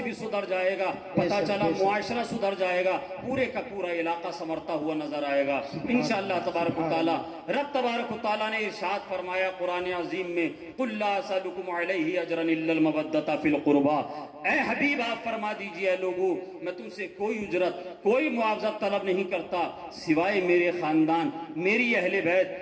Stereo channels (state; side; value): identical; both; correlation 1.00